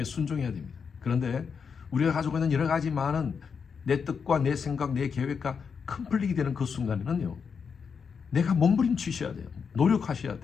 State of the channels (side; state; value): right; quieter; 6.1 dB